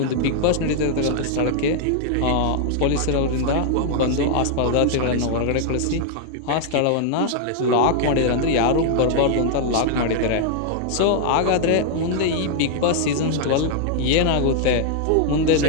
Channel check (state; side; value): different; both; correlation -0.01